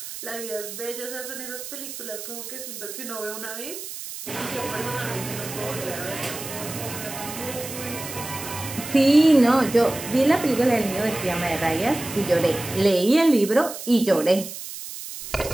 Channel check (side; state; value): right; noise; hiss, 10 dB below the sound